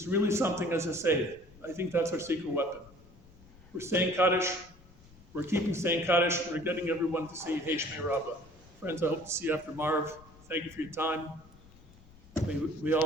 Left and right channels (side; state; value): left; noise; rumble, 24 dB below the sound